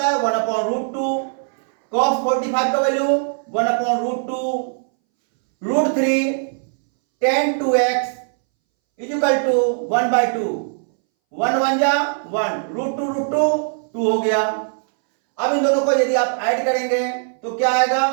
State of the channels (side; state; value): left; silent; 63 dB below the other